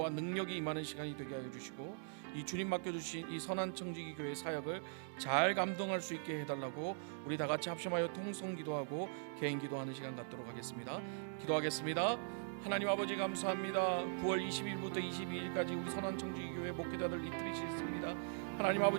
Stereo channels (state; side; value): silent; left; digital silence